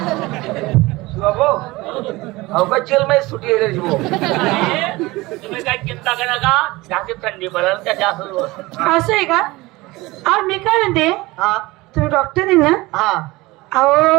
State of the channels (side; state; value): left; quieter; 21.1 dB